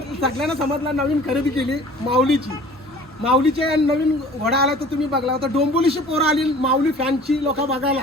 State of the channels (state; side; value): normal; both; correlation 0.47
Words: समजला नवीन खरेदी केली माऊलीची. माऊलीचे नवीन घोडा आला तर तुम्ही बघला होता. डोंबोलीची पोरं आली माऊली फॅनची लोक